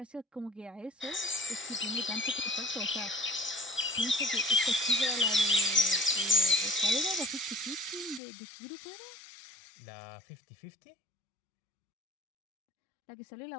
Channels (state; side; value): drops out; right; at 8.2 s